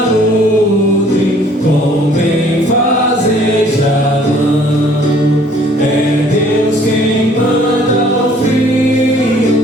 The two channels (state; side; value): normal; both; correlation 0.57